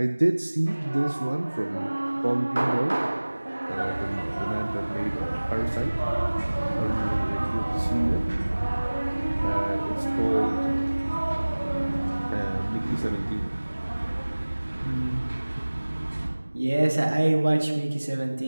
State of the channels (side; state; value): both; inverted; correlation -1.00